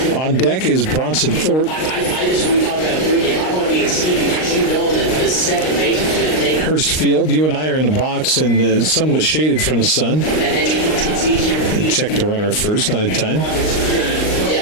On deck is Bronson Thorpe. Hurst Field, you and I are in the box and somewhat shaded from the sun. Check the runner at first, not in time.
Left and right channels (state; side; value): late; right; 38 ms